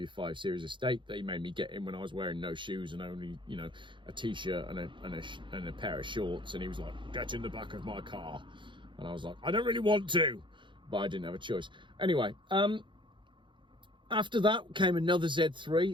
5 Series estate that he made me get in when I was wearing no shoes and only, a t-shirt and a pair of shorts. And he was like, get in the back of my car. And I was like, I don't really want to, but I didn't have a choice. Anyway, after that came another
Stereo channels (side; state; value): left; late; 0.23 ms